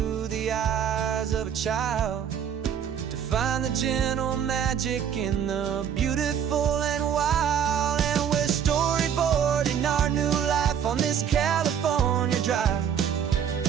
the eyes of a child, to find the gentle magic in the beautiful and wild. And we're storyboarding our new life on this California drive,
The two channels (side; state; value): left; quieter; 8.4 dB